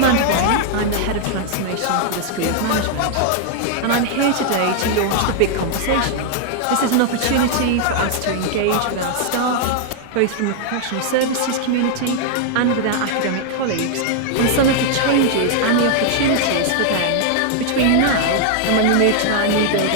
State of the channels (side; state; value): both; different; correlation 0.00